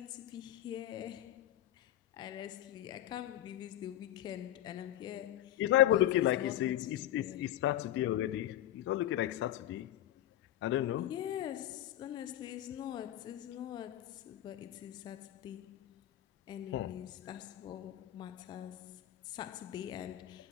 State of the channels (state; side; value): quieter; right; 13.0 dB